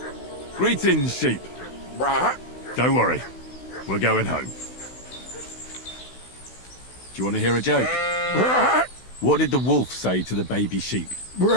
Greetings, sheep. Don't worry. We're going home. Do you want to hear a joke? What did the wolf say to the baby sheep?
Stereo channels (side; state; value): right; late; 16 ms